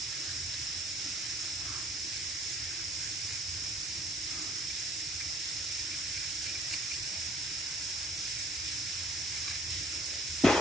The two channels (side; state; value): both; normal; correlation 0.58